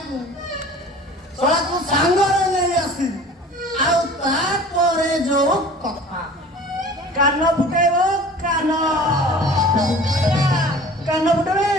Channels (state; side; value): normal; both; correlation 0.44